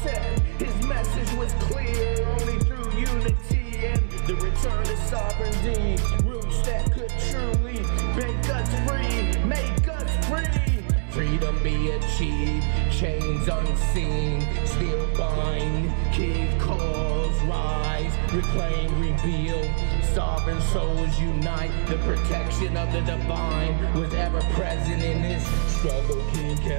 His message was clear, only through unity and the return to sovereignty. Roots that could truly make us free, make us free. Freedom be achieved, chains unseen, still bind. King calls, rise, reclaim, rebuild. Sovereign souls unite, the protection of the divine was ever present in this struggle.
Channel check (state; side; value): silent; left; 62 dB below the other